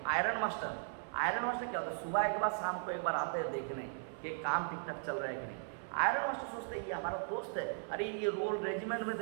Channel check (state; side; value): silent; left; 53 dB below the other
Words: आयरन मास्टर क्या होता है, सुबह एक बार शाम को एक बार आते हैं देखने कि काम ठीक ठाक चल रहा है कि नहीं। आयरन मास्टर सोचते हैं ये हमारा दोस्त है, अरे ये रोल रेजिमेंट में